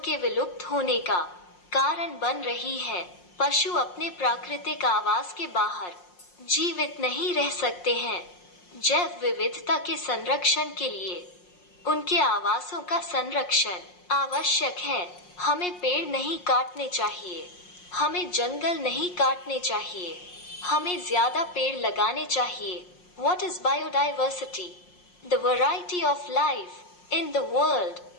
के विलुप्त होने का कारण बन रही है. पशु अपने प्राकृतिक आवास के बाहर जीवित नहीं रह सकते हैं. जैव विविधता के संरक्षण के लिए उनके आवासों का संरक्षण आवश्यक है. हमें पेड़ नहीं काटने चाहिए. हमें जंगल नहीं काटने चाहिए. हमें ज्यादा पेड़ लगाने चाहिए. What is biodiversity? The variety of life in the world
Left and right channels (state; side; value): late; right; 5.6 ms